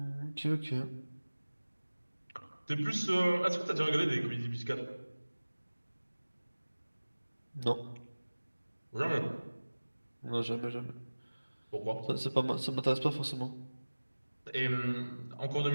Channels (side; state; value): both; inverted; correlation -1.00